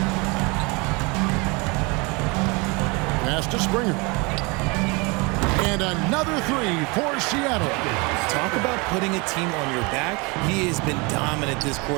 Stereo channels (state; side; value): quieter; left; 28.1 dB